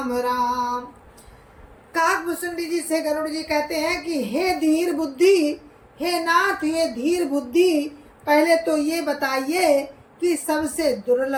राम। काकभुसुंडी जी से गरुड़ जी कहते हैं कि हे धीर बुद्धि, हे नाथ, हे धीर बुद्धि, पहले तो ये बताइए कि सबसे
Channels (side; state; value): both; identical; correlation 1.00